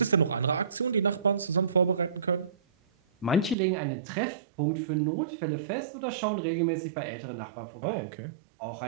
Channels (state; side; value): drops out; left; at 3.6 s